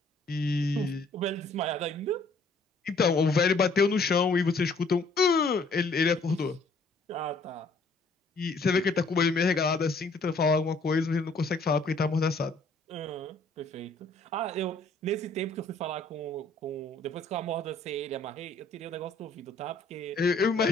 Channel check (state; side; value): quieter; right; 3.1 dB